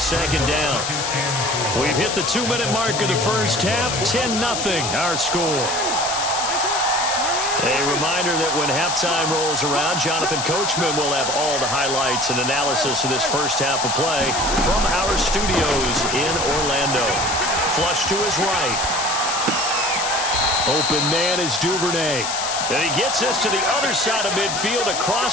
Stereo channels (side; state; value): left; noise; hiss, 3 dB below the sound